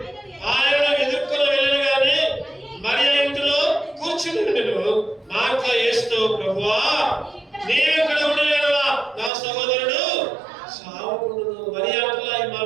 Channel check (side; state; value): left; drops out; at 9.3 s